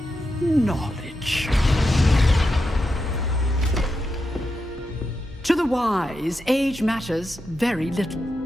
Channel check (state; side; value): normal; both; correlation 0.87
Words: Knowledge. To the wise, age matters very little.